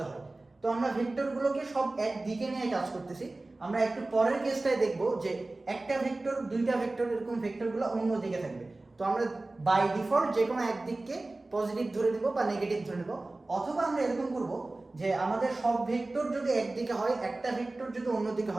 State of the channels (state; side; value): quieter; left; 3.0 dB